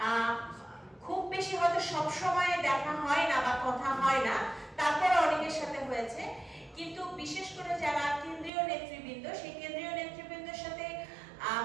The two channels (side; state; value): left; drops out; at 8.5 s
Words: খুব বেশি হয়তো সব সময় দেখা হয় না বা কথা হয় না, তারপরে অনেকের সাথে হয়েছে, কিন্তু বিশেষ করে যারা কেন্দ্রীয় নেতৃবৃন্দ, সেই কেন্দ্রীয় নেতৃবৃন্দের সাথে